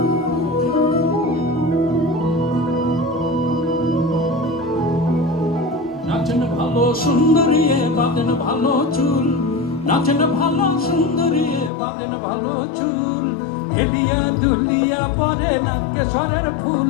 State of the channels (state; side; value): drops out; right; at 11.7 s